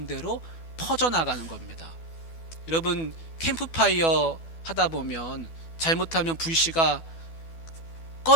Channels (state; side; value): late; right; 12 ms